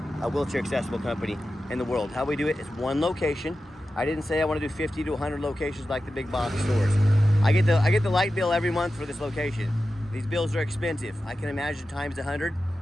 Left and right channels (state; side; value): normal; both; correlation 0.92